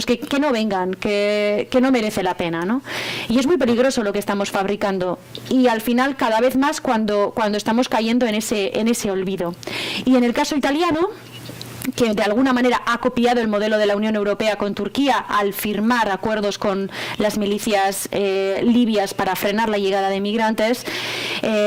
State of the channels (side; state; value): both; identical; correlation 1.00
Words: que no vengan, que no merece la pena, ¿no? Y es muy peligroso lo que estamos fabricando. Y al final cada vez más cuando estamos cayendo en ese olvido. Y en el caso italiano, que de alguna manera ha copiado el modelo de la Unión Europea con Turquía al firmar acuerdos con las milicias libias para frenar la llegada de migrantes,